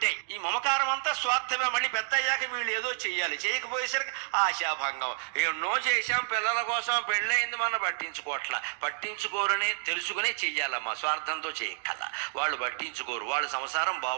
ఈ మమకారం అంతా స్వార్థమే. మళ్ళీ పెద్ద అయ్యాక వీళ్ళు ఏదో చెయ్యాలి, చేయకపోయేసరికి ఆశాభంగం. ఎన్నో చేశాం పిల్లల కోసం, పెళ్ళయింది మన పట్టించుకోరని తెలుసుకునే చెయ్యాలమ్మా. స్వార్థంతో చేయక్కల, వాళ్ళు పట్టించుకోరు, వాళ్ళ సంసారం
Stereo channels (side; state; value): left; silent; digital silence